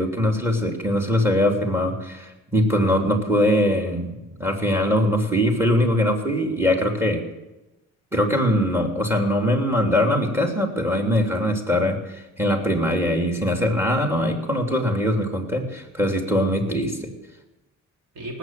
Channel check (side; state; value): both; normal; correlation 0.57